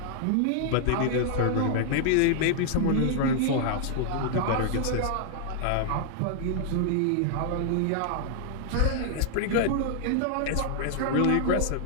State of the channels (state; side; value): different; both; correlation 0.00